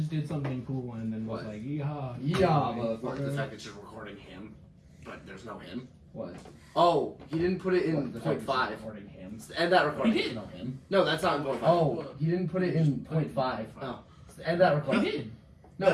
did something cool and then was What? like, yeehaw. What, the fact that you're recording him, but there's no him. What? Oh, he didn't put it in What, the fact that 0.5. you're recording him. End that recording. He did. No, him. No, that's not in 0.5. Oh, he didn't put it in 0.5. Oh. End that recording. He did. No,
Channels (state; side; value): identical; both; correlation 1.00